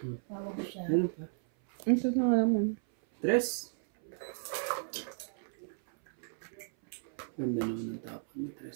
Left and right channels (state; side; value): silent; left; 55 dB below the other